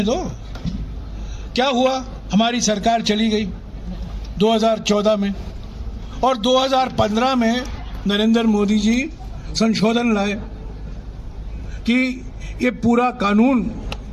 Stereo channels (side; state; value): both; identical; correlation 1.00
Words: दो। क्या हुआ, हमारी सरकार चली गई 2014 में, और 2015 में नरेंद्र मोदी जी संशोधन लाए कि ये पूरा कानून